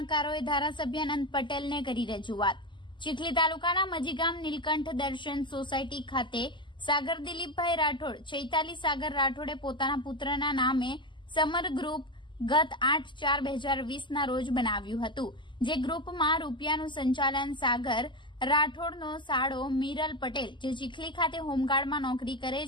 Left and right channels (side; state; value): right; late; 0.23 ms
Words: ધારાસભ્ય અનંત પટેલને કરી રજૂઆત। ચીખલી તાલુકાના મજીગામ નીલકંઠ દર્શન સોસાયટી ખાતે સાગર દિલીપભાઈ રાઠોડ, ચૈતાલી સાગર રાઠોડે પોતાના પુત્રના નામે સમર ગ્રુપ ગત 8/4/2020ના રોજ બનાવ્યું હતું, જે ગ્રુપમાં રૂપિયાનું સંચાલન સાગર રાઠોડનો સાળો મીરલ પટેલ, જે ચીખલી ખાતે હોમગાર્ડમાં નોકરી કરે